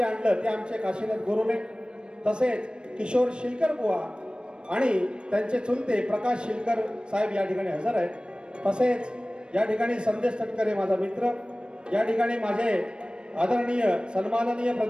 आणलं ते आमचे काशीनाथ गुरुने, तसेच किशोर शिलकर बुवा आणि त्यांचे चुलते प्रकाश शिलकर साहेब या ठिकाणी हजर आहेत. तसेच या ठिकाणी संदेश तटकरे माझा मित्र, या ठिकाणी माझे आदरणीय सन्माननीय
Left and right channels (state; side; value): late; left; 0.053 ms